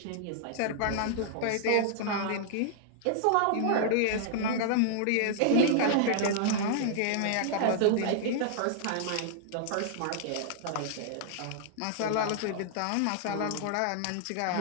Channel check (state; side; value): different; both; correlation -0.01